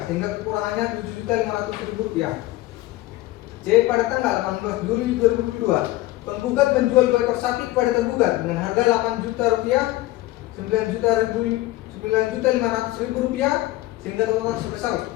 sehingga kekurangannya Rp7.500.000. C. Pada tanggal 18 Juli 2022 penggugat menjual 2 ekor sapi kepada tergugat dengan harga Rp8 juta, Rp9.500.000, sehingga total sebesar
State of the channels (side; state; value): right; quieter; 17.6 dB